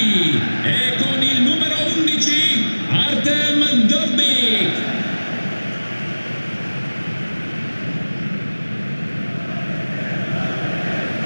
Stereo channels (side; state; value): both; inverted; correlation -1.00